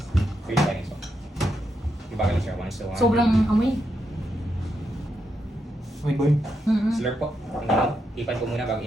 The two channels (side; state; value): both; normal; correlation 0.83